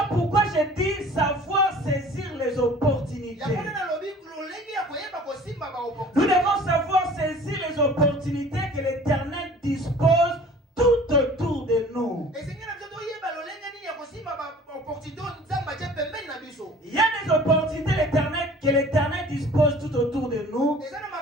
pourquoi je dis savoir saisir les opportunités. Nous devons savoir saisir les opportunités que l'Éternel dispose tout autour de nous. Il y a des opportunités que l'Éternel dispose tout autour de nous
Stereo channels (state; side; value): normal; both; correlation 0.48